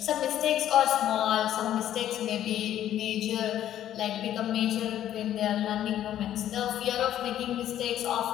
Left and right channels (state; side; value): quieter; right; 11.6 dB